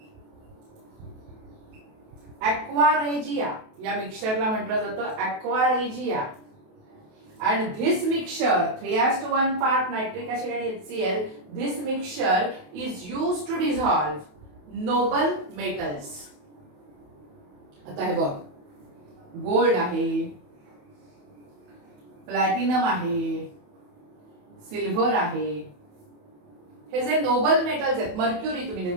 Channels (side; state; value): left; late; 28 ms